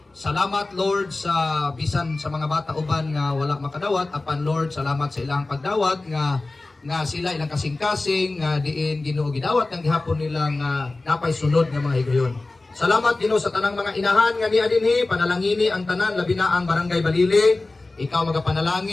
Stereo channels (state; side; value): quieter; right; 3.2 dB